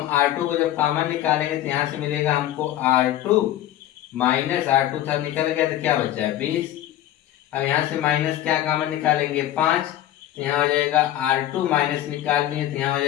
R2 को जब कॉमन निकालेंगे तो यहाँ से मिलेगा हमको R2 माइनस R2 था, निकल गया तो क्या बचा है? 20। अब यहाँ से माइनस क्या कॉमन निकालेंगे? 5। तो यहाँ हो जाएगा R2 माइनस निकाल लिए तो यहाँ हो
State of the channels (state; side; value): quieter; right; 13.0 dB